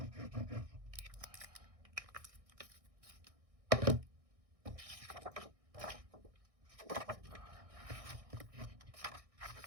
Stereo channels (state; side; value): late; left; 1.6 ms